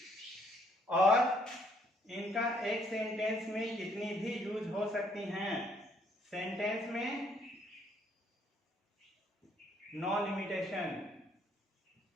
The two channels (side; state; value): both; normal; correlation 0.67